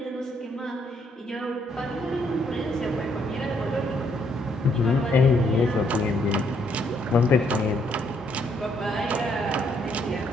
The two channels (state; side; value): normal; both; correlation 0.71